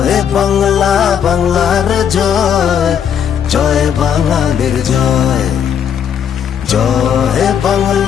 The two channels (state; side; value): quieter; right; 8.4 dB